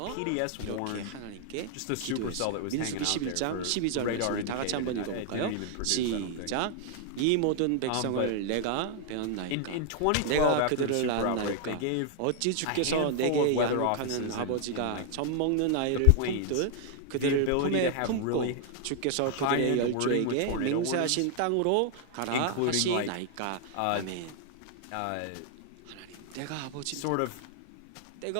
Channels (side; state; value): both; different; correlation 0.00